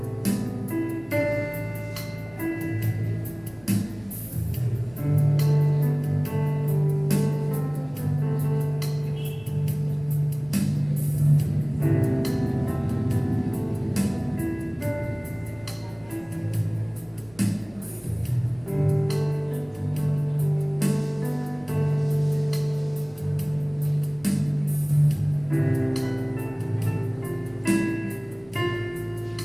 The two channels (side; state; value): right; noise; rumble, 26 dB below the sound